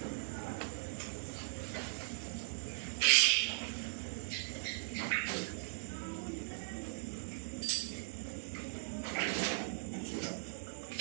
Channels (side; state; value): left; silent; digital silence